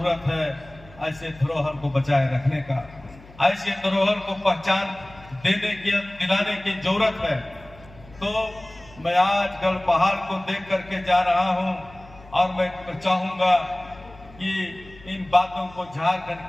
है ऐसे धरोहर को बचाए रखने का, ऐसे धरोहर को पहचान दिलाने की जरूरत है। तो मैं आज गढ़ पहाड़ को देख करके जा रहा हूं और मैं चाहूंगा कि इन बातों को झारखंड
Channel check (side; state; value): left; noise; hum, 22 dB below the sound